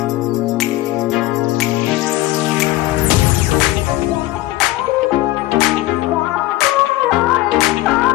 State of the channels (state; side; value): quieter; right; 16.6 dB